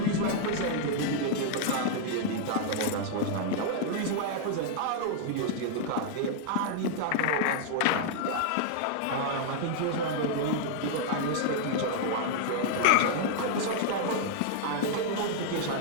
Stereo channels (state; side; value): different; both; correlation -0.01